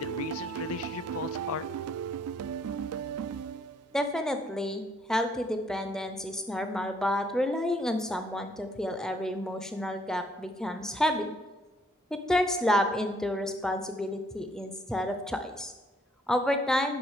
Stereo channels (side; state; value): both; normal; correlation 0.65